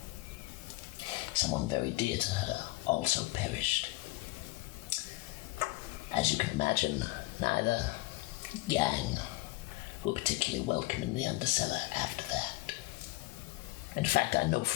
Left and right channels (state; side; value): quieter; right; 20.3 dB